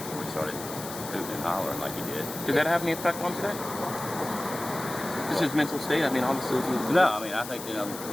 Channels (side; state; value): left; noise; hiss, 11 dB below the sound